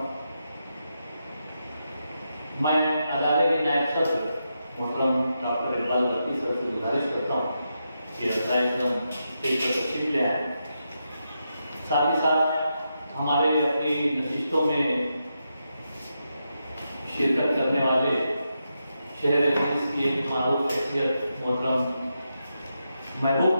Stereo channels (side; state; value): both; inverted; correlation -0.85